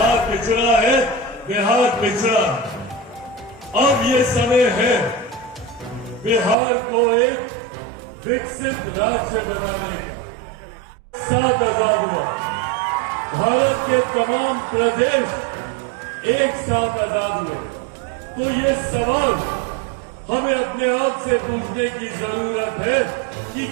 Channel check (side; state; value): left; drops out; at 6.6 s